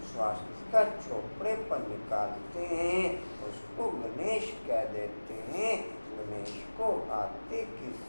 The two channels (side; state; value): both; inverted; correlation -1.00